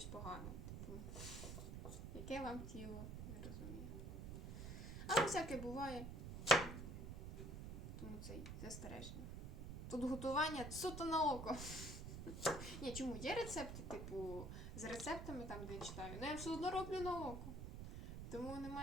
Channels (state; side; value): noise; right; rumble, 7 dB below the sound